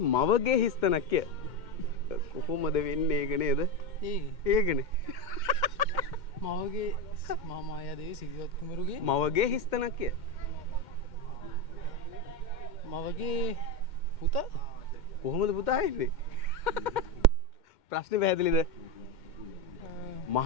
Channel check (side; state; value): right; late; 2.1 ms